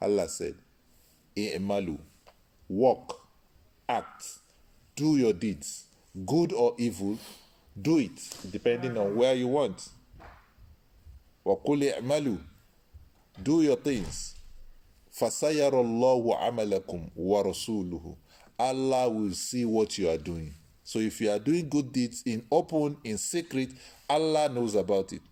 said, i'malu, walk, act, do your deeds, good or evil, do it, depending on where you want. وَقُلِ اعْمَلُوا, do your things. فَسَيَرَ اللَّهُ عَمَلَكُمْ وَرَسُولُهُ. Allah will see what you are doing. So if you are doing good deeds in open, in secret, Allah knows about it.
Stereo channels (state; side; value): identical; both; correlation 1.00